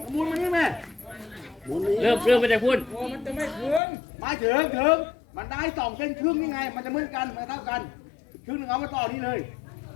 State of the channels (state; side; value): drops out; right; at 3.8 s